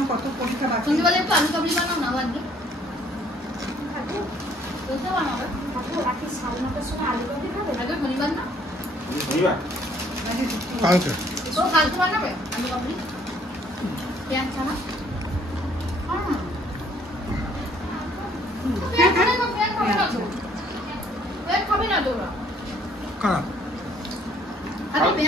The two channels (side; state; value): both; normal; correlation 0.62